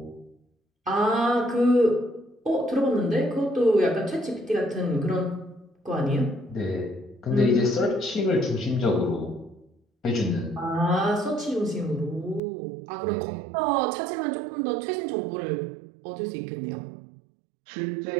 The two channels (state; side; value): drops out; left; at 12.4 s